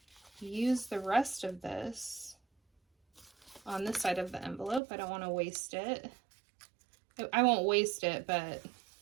use the rest of this on this side of the envelope. I don't want to waste it. I won't waste it, but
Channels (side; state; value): left; drops out; at 4.8 s